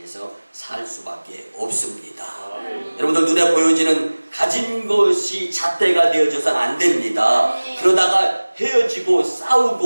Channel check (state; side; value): inverted; both; correlation -1.00